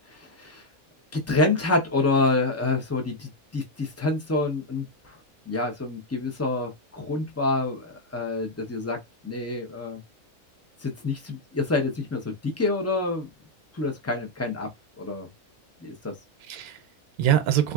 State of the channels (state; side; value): normal; both; correlation 0.00